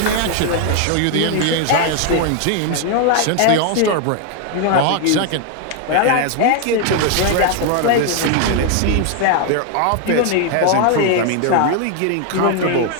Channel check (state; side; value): different; both; correlation 0.00